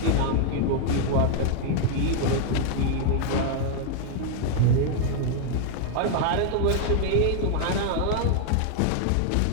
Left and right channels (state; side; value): different; both; correlation 0.00